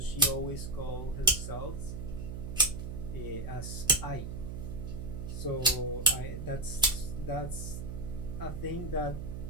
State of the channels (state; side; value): noise; right; hum, 6 dB below the sound